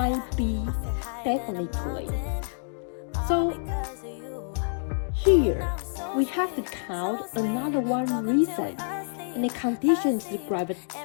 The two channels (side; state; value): right; silent; digital silence